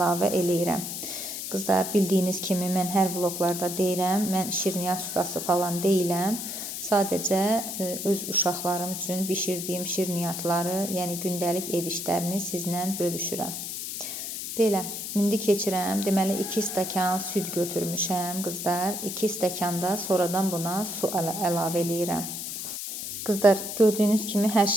eləyirəm. Qızlar, bildiyiniz kimi mən hər vloqlarda deyirəm, mən şirniyyat ustası falan deyiləm. Sadəcə öz uşaqlarım üçün bişirdiyim şirniyyatları, yəni gündəlik ev işlərini sizlə bölüşürəm. Belə, indi keçirəm. Deməli 2 stəkan süd götürmüşəm qızlar. 2 stəkan da sonradan buna su əlavə eləyirəm. Qızlar, gördüyünüz kimi hər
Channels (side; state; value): left; noise; hiss, 6 dB below the sound